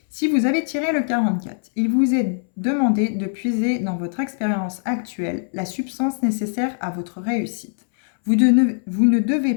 Si vous avez tiré le 44, il vous est demandé de puiser dans votre expérience actuelle la substance nécessaire à votre réussite. Vous ne devez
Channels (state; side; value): silent; right; 65 dB below the other